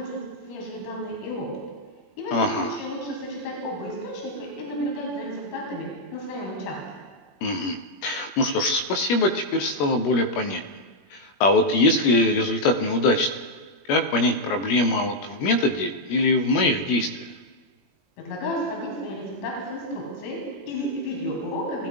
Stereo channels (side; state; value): right; late; 21 ms